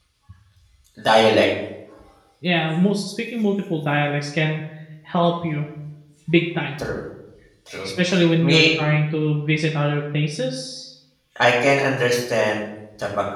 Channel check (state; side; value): identical; both; correlation 1.00